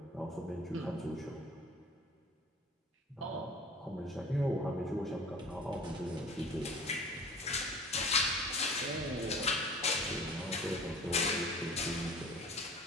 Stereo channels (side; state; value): both; normal; correlation 0.44